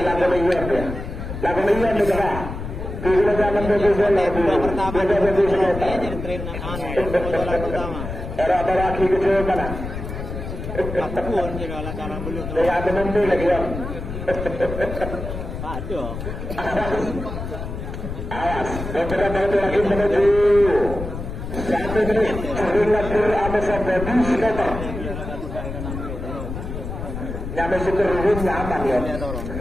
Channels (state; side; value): noise; left; rumble, 7 dB below the sound